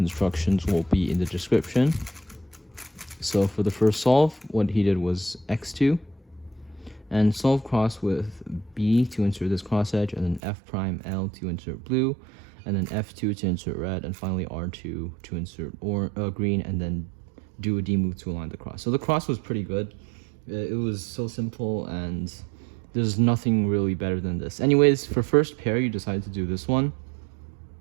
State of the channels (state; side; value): drops out; left; at 10.4 s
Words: will be in the description. So for the first solve, what he did was x2, and solve cross with B to insert this cross edge, and then F prime L to insert blue, and then F2 to insert red, and finally R2 to insert green, and then do a D move to align the cross. So the cross was pretty good. It was so simple, and there's nothing really better than this. Anyways, for first pair, you decided to do this one.